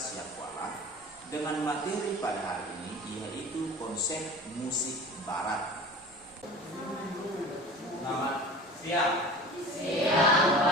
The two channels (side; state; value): right; noise; rumble, 30 dB below the sound